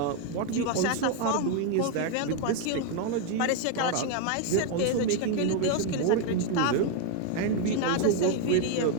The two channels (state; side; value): different; both; correlation 0.01